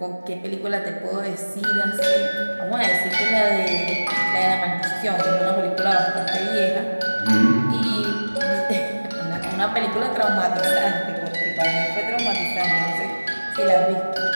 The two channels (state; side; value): inverted; both; correlation -1.00